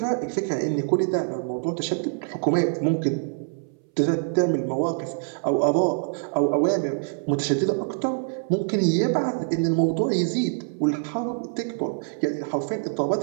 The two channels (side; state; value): left; silent; 62 dB below the other